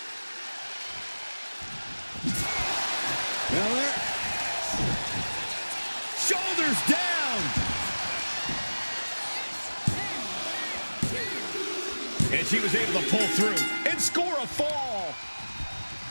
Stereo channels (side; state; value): both; inverted; correlation -1.00